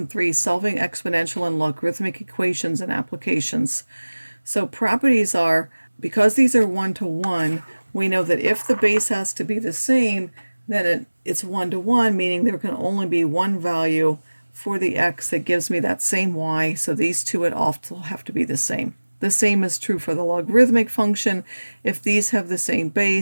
3, Solving Exponential and Logarithmic Equations and Applications. So properties are, because these are one-to-one, we know that if the base has to be the same, then it's one-to-one, meaning there can only be one value for the x that gives me that same y, so these two would also have to be the same. The same is true for the logarithmic function. If these have the same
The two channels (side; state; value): both; inverted; correlation -1.00